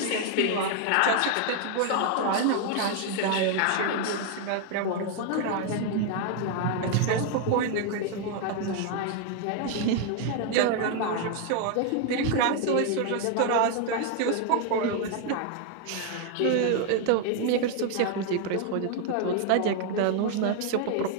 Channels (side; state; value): both; different; correlation 0.00